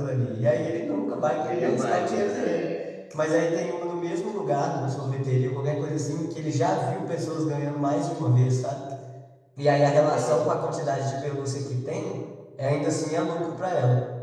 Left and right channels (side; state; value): both; identical; correlation 1.00